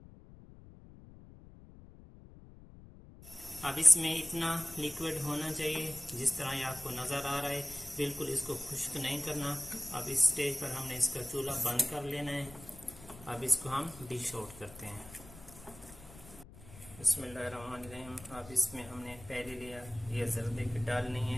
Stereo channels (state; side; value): noise; left; rumble, 18 dB below the sound